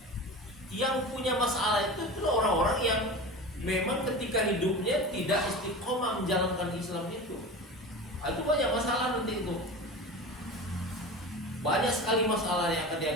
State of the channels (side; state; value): both; normal; correlation 0.31